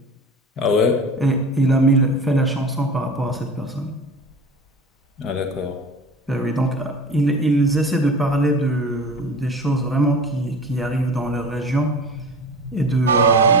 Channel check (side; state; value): both; normal; correlation 0.35